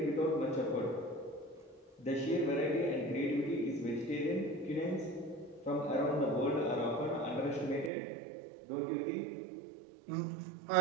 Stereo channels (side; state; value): left; drops out; at 7.9 s